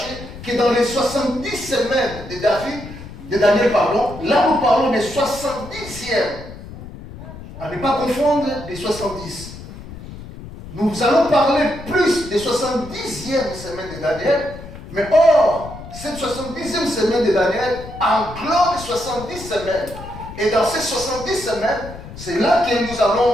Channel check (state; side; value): noise; left; rumble, 14 dB below the sound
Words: que dans les 70 semaines de Daniel, pardon, là nous parlons des 70e. À ne pas confondre des 70. Nous allons parler plus des 70e semaine de Daniel, mais or, cette 70e semaine de Daniel englobe 70 semaines. Et dans ces 70 semaines, c'est là que nous allons